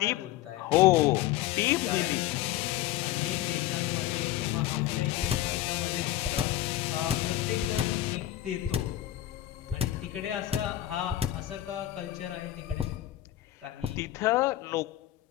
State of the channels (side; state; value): right; quieter; 13.8 dB